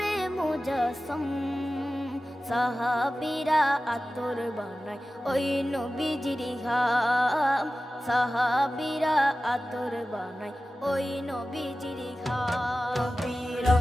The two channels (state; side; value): normal; both; correlation 0.95